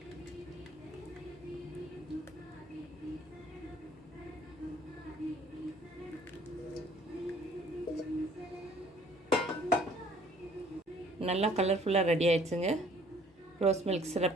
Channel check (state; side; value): normal; both; correlation 0.57